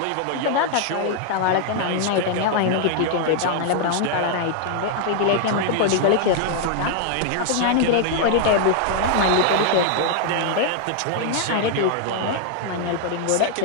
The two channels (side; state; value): both; different; correlation 0.00